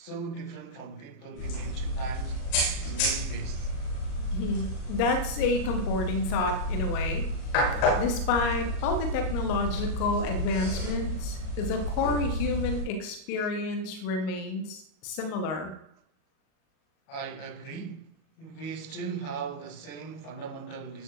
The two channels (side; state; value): right; late; 38 ms